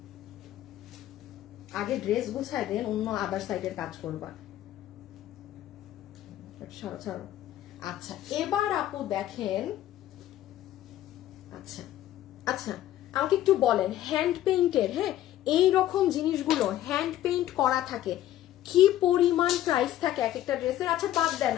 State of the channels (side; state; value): right; quieter; 13.1 dB